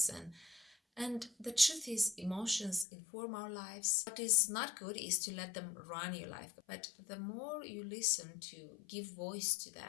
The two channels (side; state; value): right; drops out; at 2.9 s